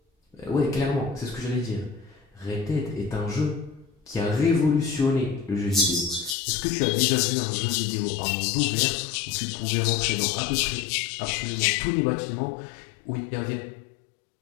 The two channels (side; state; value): right; drops out; at 6.4 s